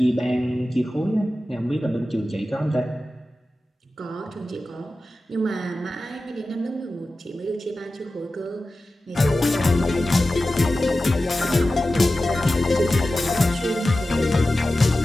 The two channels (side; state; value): both; normal; correlation 0.94